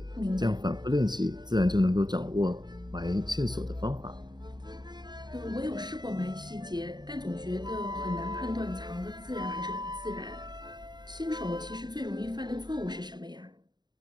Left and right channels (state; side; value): late; left; 0.21 ms